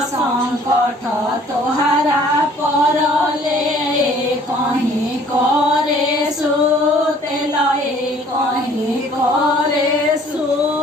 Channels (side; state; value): both; normal; correlation 0.56